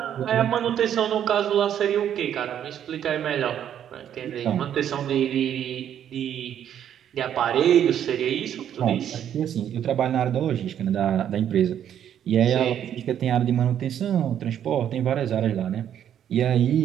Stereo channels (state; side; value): quieter; left; 9.8 dB